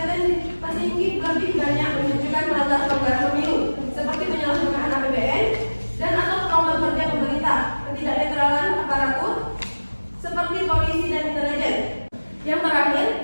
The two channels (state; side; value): inverted; both; correlation -1.00